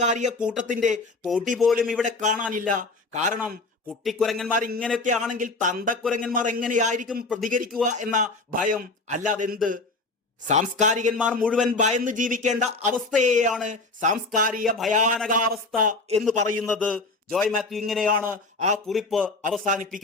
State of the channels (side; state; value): right; quieter; 3.4 dB